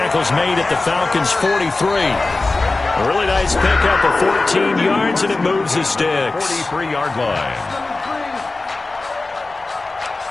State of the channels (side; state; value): right; quieter; 3.4 dB